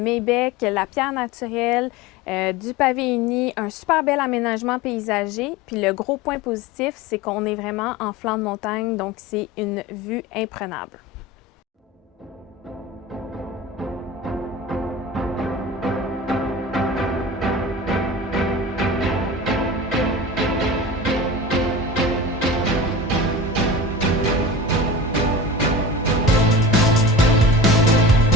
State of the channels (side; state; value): both; normal; correlation 0.32